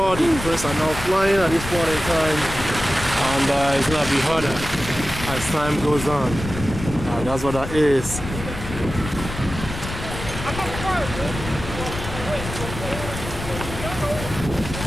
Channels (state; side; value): noise; left; rumble, 9 dB below the sound